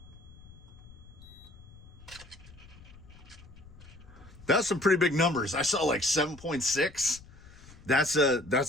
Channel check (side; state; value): left; noise; rumble, 20 dB below the sound